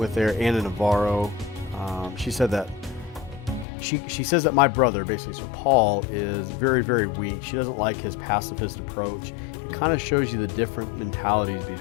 there, Anna Navarro, she said that she says that my brother, basically, so Paul, is very, very weak. She doesn't like his pacifist approach. It kind of shows you the different mentalities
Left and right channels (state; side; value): drops out; right; at 3.7 s